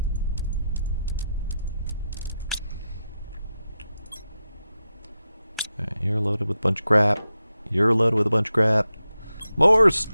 Alright, you're loaded with a bunch of crap. You're loaded with a bunch of crap. More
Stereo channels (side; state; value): both; inverted; correlation -0.88